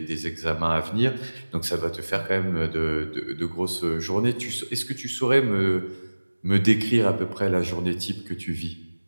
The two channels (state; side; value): inverted; both; correlation -1.00